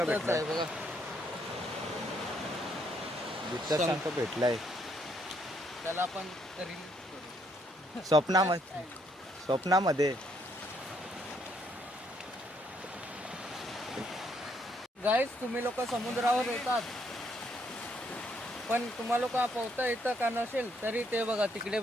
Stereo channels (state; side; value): normal; both; correlation 0.71